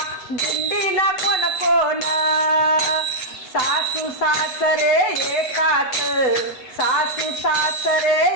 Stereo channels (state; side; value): late; right; 8.1 ms